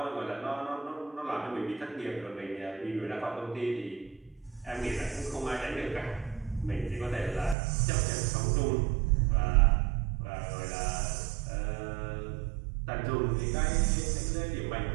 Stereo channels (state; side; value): drops out; left; at 7.6 s